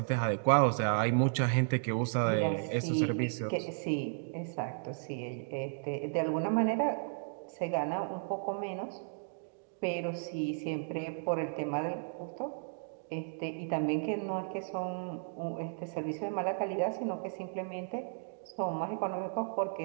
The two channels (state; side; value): silent; left; digital silence